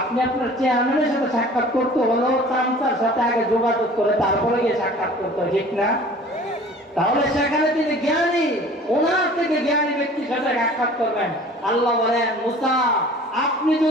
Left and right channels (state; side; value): normal; both; correlation 0.46